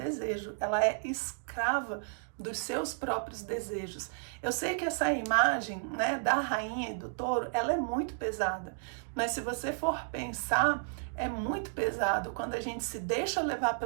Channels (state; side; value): silent; left; digital silence